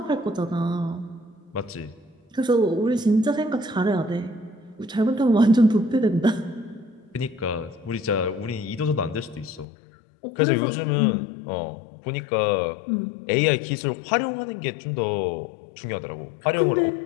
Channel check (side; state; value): right; drops out; at 9.7 s